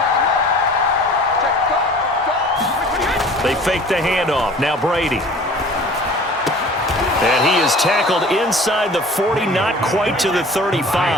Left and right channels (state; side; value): normal; both; correlation 0.45